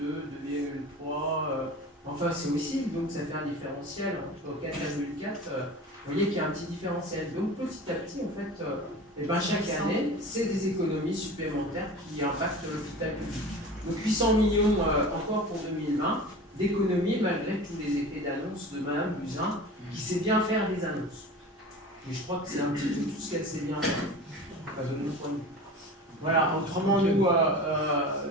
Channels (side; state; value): both; normal; correlation 0.35